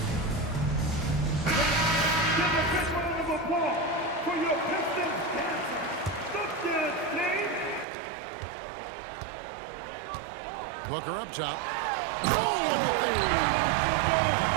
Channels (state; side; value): drops out; left; at 7.9 s